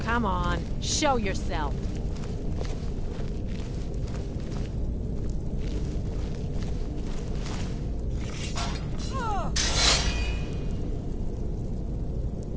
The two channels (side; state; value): both; identical; correlation 1.00